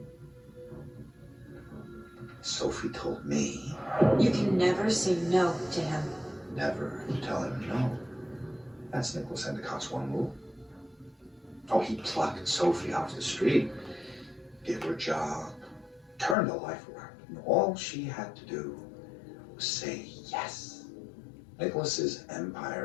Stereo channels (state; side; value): drops out; right; at 16.4 s